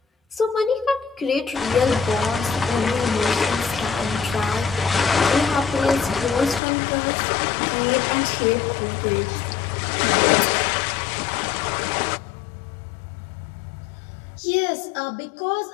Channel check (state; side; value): drops out; right; at 6.6 s